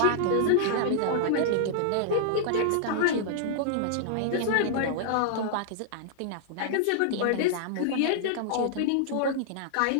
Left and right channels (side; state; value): both; different; correlation -0.01